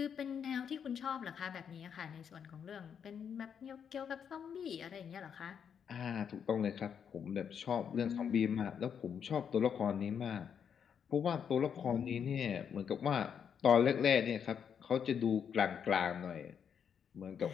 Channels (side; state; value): right; quieter; 7.6 dB